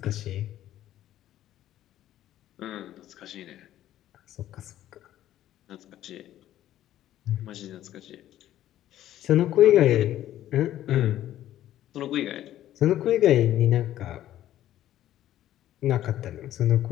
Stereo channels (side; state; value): right; quieter; 12.8 dB